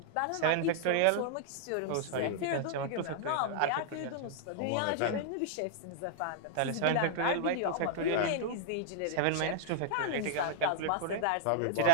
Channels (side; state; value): both; different; correlation -0.01